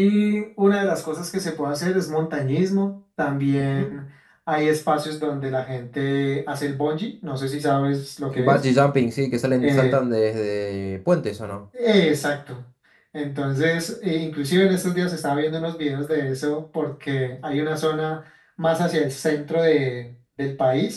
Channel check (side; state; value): both; identical; correlation 1.00